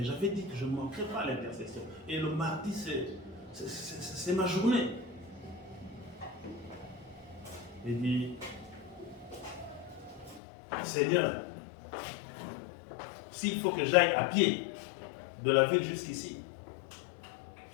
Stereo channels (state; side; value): drops out; right; at 10.4 s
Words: j'avais dit que je ne manquerais pas à l'intercession. Et le mardi, c'est ma journée. Il dit, Seigneur, s'il faut que j'aille à pied de la ville jusqu'ici,